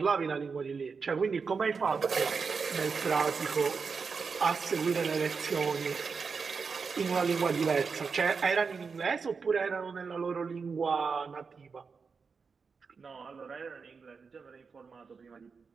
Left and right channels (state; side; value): quieter; left; 5.2 dB